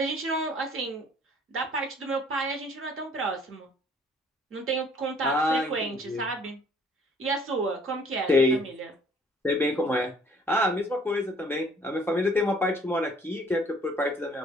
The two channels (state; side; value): normal; both; correlation 0.57